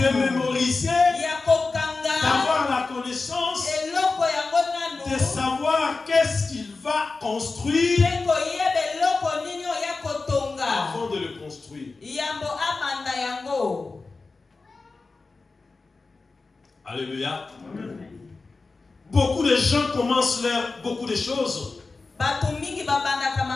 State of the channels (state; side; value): quieter; right; 3.9 dB